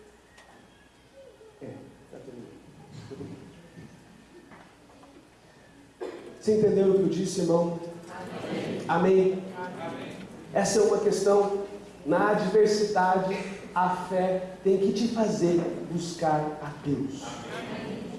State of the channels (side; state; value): both; identical; correlation 1.00